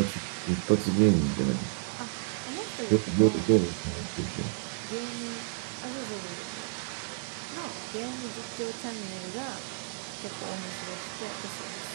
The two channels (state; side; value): silent; left; 57 dB below the other